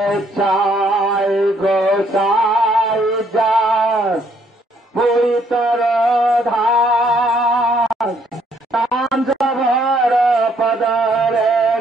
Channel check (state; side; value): normal; both; correlation 0.68